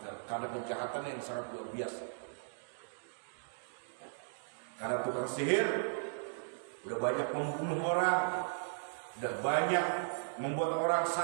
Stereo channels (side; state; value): left; silent; digital silence